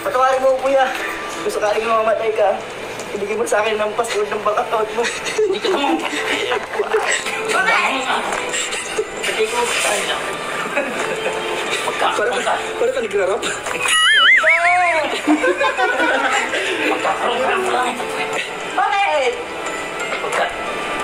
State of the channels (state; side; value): identical; both; correlation 1.00